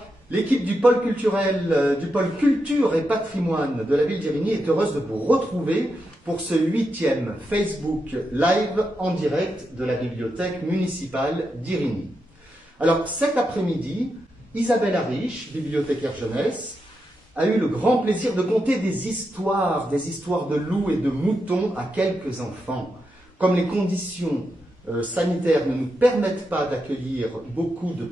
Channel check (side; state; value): both; normal; correlation 0.85